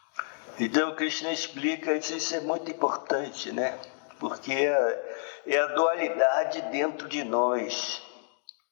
Então, Krishna explica isso é muito importante, né? Porque é a dualidade dentro de nós.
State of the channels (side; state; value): right; silent; 58 dB below the other